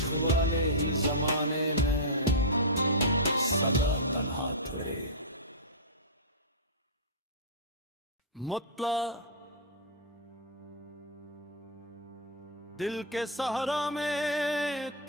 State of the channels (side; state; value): both; normal; correlation -0.11